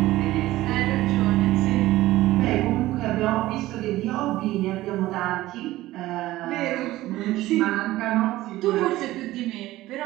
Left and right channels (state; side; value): quieter; left; 16.6 dB